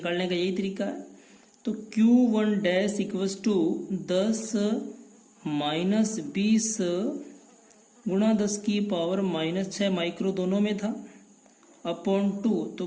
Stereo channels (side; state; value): both; identical; correlation 1.00